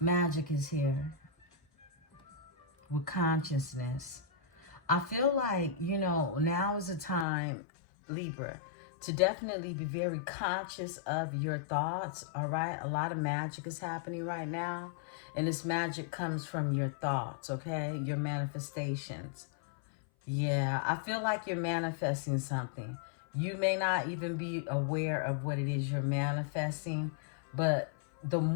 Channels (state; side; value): drops out; right; at 7.2 s